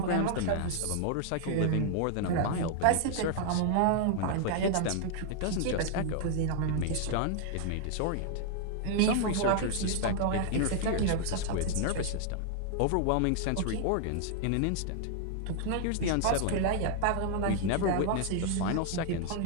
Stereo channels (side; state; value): both; different; correlation 0.00